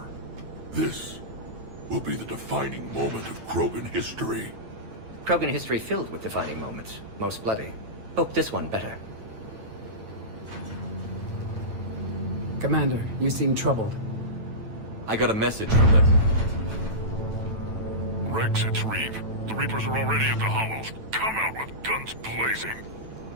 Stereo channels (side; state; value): left; late; 9.1 ms